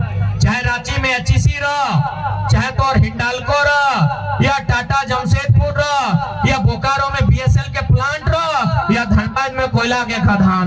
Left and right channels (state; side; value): identical; both; correlation 1.00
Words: चाहे रांची में एचईसी रहो, चाहे तो हिंडाल्को रहो, या टाटा जमशेदपुर रहो, या बोकारो में बीएसएल के प्लांट रहो, या धनबाद में कोयला के